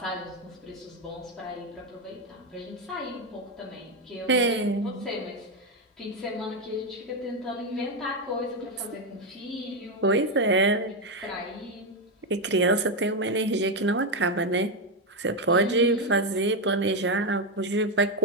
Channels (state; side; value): normal; both; correlation 0.07